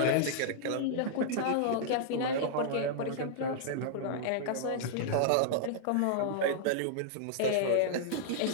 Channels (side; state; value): both; different; correlation -0.01